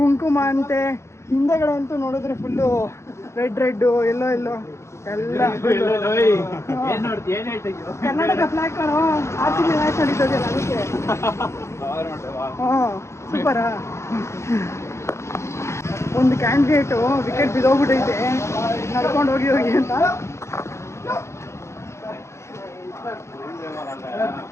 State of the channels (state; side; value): late; right; 0.13 ms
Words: ಅಂತೆ, ಹಿಂದೆಗಡೆ ಅಂತೂ ನೋಡಿದ್ರೆ ಫುಲ್ಲು ರೆಡ್ ಎಲ್ಲೋ ಎಲ್ಲ ಏನ್ ನೋಡ್ತಿ ಏನ್ ಹೇಳ್ತಿದ್ಯೋ ಕರ್ನಾಟಕ ಫ್ಲಾಗ್ ಕಾಣೋ RCB ಮ್ಯಾಚ್ ನಡೀತದಲ್ಲ ಅದಕ್ಕೆ. ಹಾಂ ಸೂಪರಾ. ಒಂದು ಕ್ಯಾಂಡಿಡೇಟು ವಿಕೆಟ್ ಬಿದ್ದೋಗ್ಬಿಟ್ಟೈತೆ ನಡ್ಕೊಂಡು ಹೋಗಿ ಅಂತ.